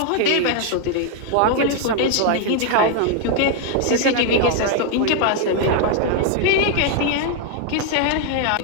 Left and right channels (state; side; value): different; both; correlation 0.00